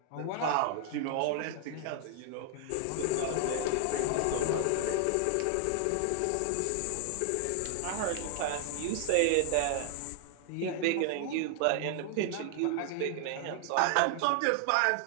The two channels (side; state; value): both; different; correlation 0.00